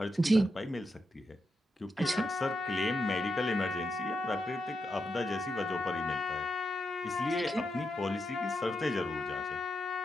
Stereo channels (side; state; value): both; normal; correlation 0.85